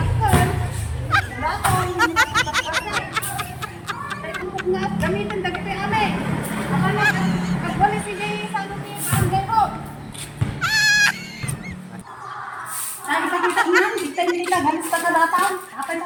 Dato nga gamitin dagiti ame. Apa na agwalis si Jay sa ano ti barangay ko. Ay, ipakita ko nan, kita nila galis pa sa datang. Apa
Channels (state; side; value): identical; both; correlation 1.00